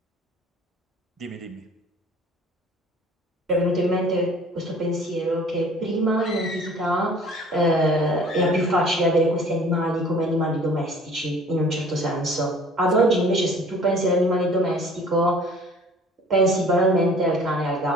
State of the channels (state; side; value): normal; both; correlation 0.50